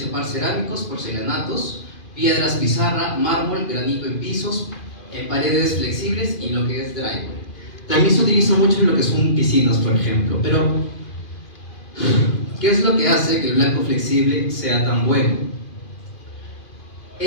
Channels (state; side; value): late; right; 2.4 ms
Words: cerámicos, porcelanatos, piedras pizarra, mármol, granito en pisos, en paredes flexibles y lo que es drywall. También se utiliza mucho en lo que son piscinas, por ejemplo, pero ¿qué es lo que hace que el blanco flexible sea tan bueno?